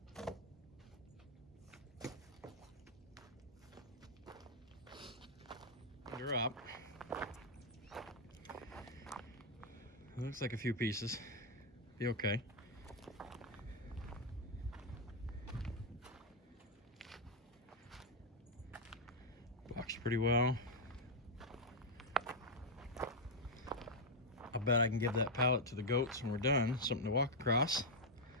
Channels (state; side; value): normal; both; correlation 0.00